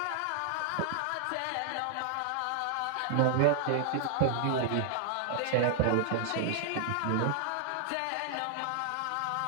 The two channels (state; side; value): different; both; correlation 0.00